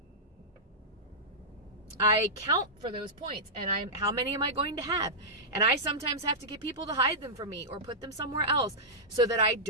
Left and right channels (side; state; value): both; normal; correlation -0.13